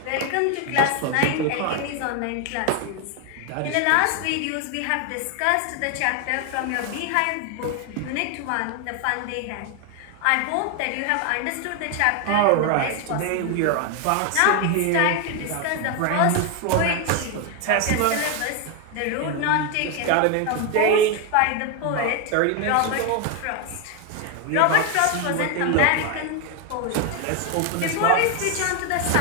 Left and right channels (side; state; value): both; different; correlation 0.01